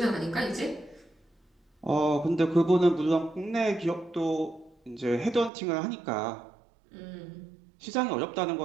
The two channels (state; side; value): drops out; left; at 5.5 s